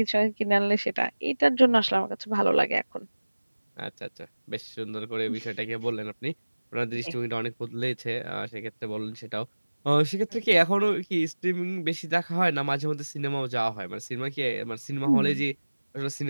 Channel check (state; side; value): inverted; both; correlation -1.00